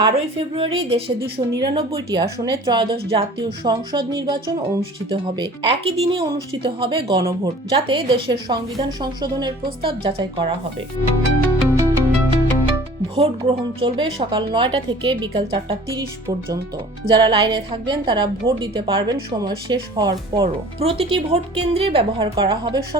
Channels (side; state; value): both; normal; correlation 0.47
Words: ফেব্রুয়ারি দেশে 299টি আসনে ত্রয়োদশ জাতীয় সংসদ নির্বাচন অনুষ্ঠিত হবে। একই দিনে অনুষ্ঠিত হবে গণভোট, যাতে দেশের সংবিধান সংশোধনের প্রস্তাব যাচাই করা হবে। ভোট গ্রহণ চলবে সকাল 9টা থেকে বিকাল 4:30 পর্যন্ত। যারা লাইনে থাকবেন তারা ভোট দিতে পারবেন সময় শেষ হওয়ার পরও। প্রতিটি ভোট কেন্দ্রে ব্যবহার করা হবে